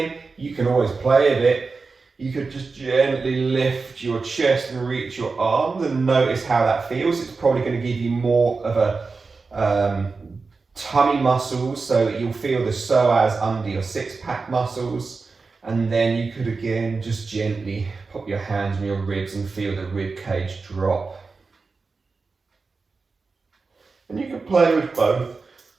you can always play a bit. You could just gently lift your chest and reach your arms and notice how that feels. It's probably going to give you more of a tummy muscles, so you'll feel the psoas under your six-pack muscles. And then you could again just gently put your hands on your ribs and feel the rib cage drop. And you can play with both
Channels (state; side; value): quieter; left; 4.3 dB